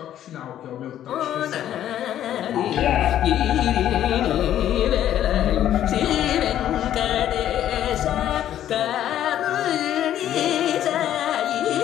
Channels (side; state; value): right; quieter; 11.5 dB